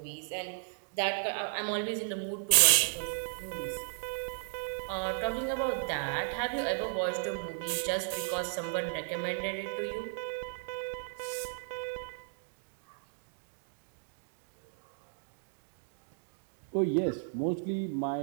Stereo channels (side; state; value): left; silent; digital silence